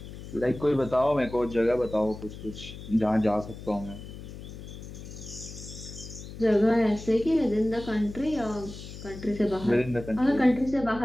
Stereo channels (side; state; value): left; noise; hum, 12 dB below the sound